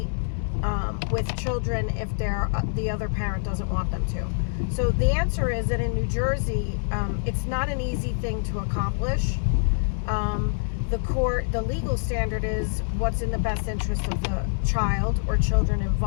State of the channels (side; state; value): right; silent; 61 dB below the other